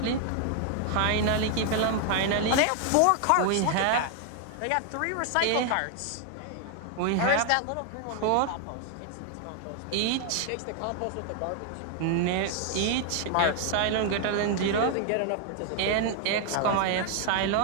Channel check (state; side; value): different; both; correlation 0.00